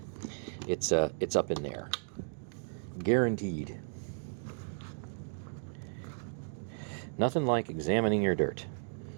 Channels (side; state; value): left; silent; digital silence